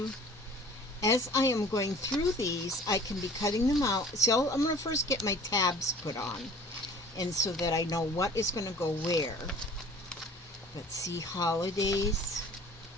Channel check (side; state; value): both; normal; correlation 0.47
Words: going through these, I can be cutting them out. So I'm going to first get my tabs put on, and so that I know what is going to go where. Let's see, holidays.